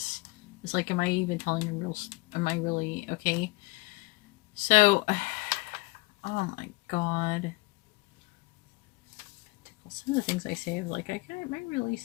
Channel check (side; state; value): right; quieter; 24.1 dB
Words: It's like, am I even telling a real... Am I really... Okay. So... Oh my god. Some of the things I say, I'm like, am I really